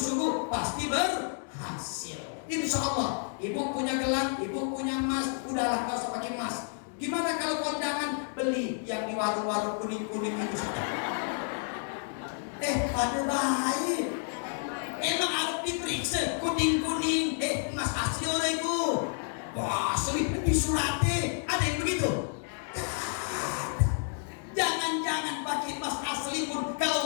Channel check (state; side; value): silent; right; 58 dB below the other